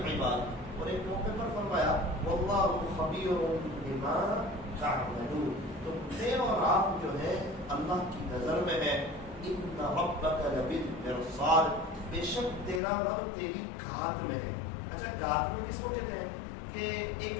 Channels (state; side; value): drops out; right; at 12.8 s